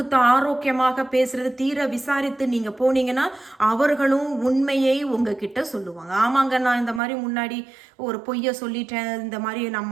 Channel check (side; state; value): left; drops out; at 7.0 s